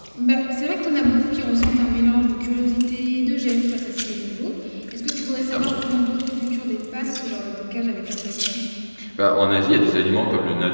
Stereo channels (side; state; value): both; inverted; correlation -1.00